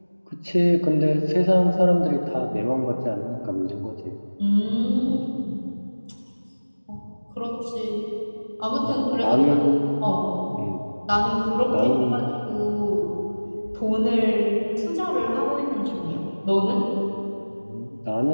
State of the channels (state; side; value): inverted; both; correlation -1.00